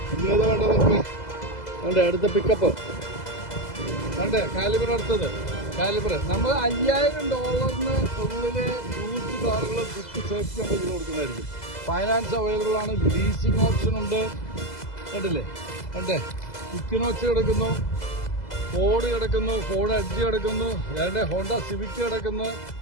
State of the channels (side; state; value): right; late; 2.0 ms